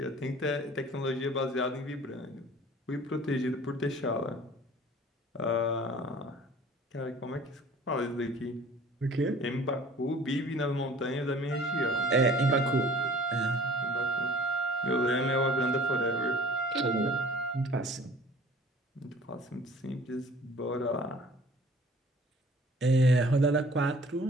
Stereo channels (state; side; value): normal; both; correlation 0.49